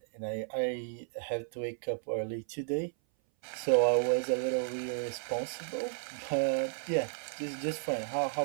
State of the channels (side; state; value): left; silent; 56 dB below the other